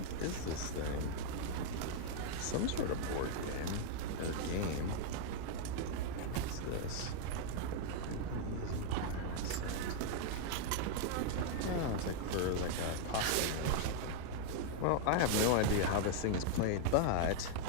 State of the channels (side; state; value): both; different; correlation 0.00